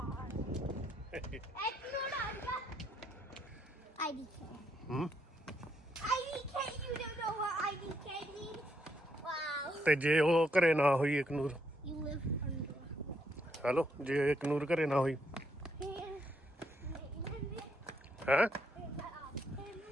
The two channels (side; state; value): both; normal; correlation 0.75